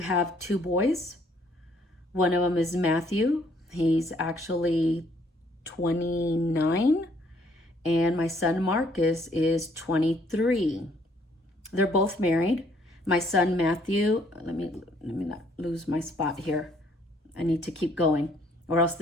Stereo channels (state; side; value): normal; both; correlation 0.65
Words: 2 boys. One of them is Matthew. He's actually 29. And my son Marcus is 23. They're both married. My son Matthew, let me not lose my spot here. I need to keep going, or else